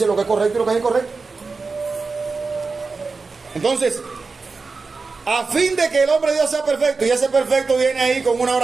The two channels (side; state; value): left; quieter; 4.3 dB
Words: lo que es correcto y lo que es incorrecto. Entonces, a fin de que el hombre de Dios sea perfecto, y ese perfecto viene ahí con una